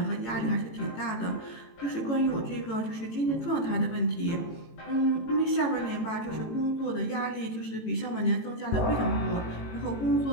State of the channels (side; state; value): right; late; 18 ms